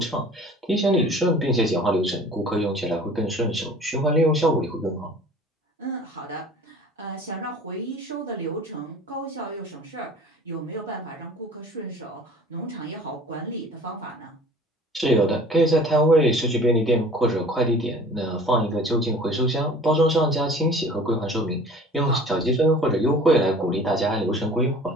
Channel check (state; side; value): normal; both; correlation 0.46